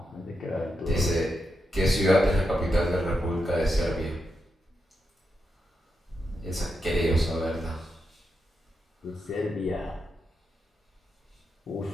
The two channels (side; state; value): both; normal; correlation 0.86